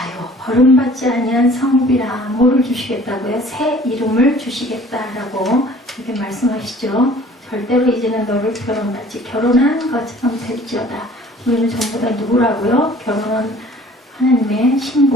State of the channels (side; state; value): both; normal; correlation 0.51